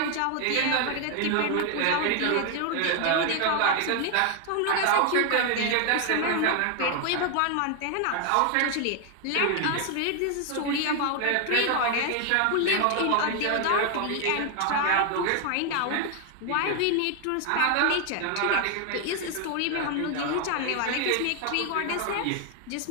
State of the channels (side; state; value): both; different; correlation 0.01